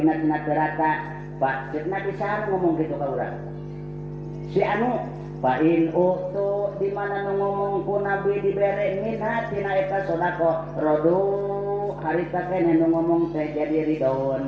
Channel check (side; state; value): both; identical; correlation 1.00